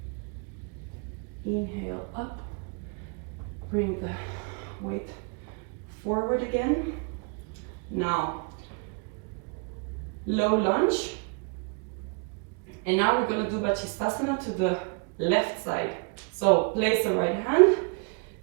inhale up, bring the weight forward again. Now, low lunge, and now we're going to do Basistana to the left side. So place the right hand,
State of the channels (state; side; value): quieter; left; 35.2 dB